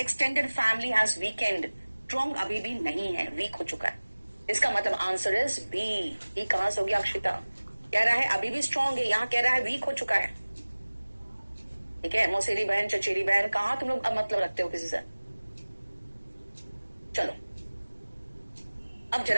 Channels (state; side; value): inverted; both; correlation -1.00